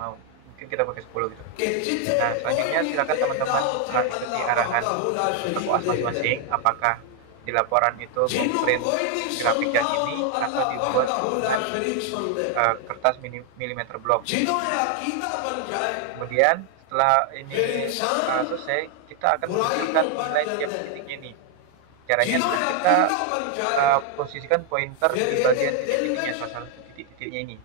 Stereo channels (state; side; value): different; both; correlation 0.01